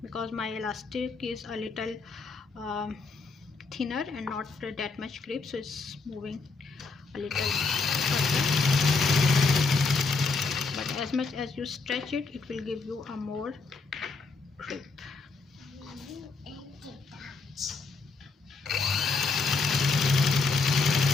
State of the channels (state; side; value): quieter; right; 4.2 dB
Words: because my elastic is a little thinner and not that much grip, so it's moving a little further, but as much as you stretch it, it will give you a more grip.